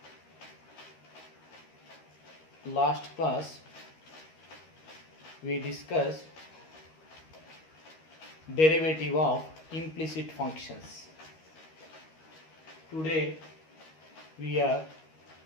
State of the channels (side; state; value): right; late; 13 ms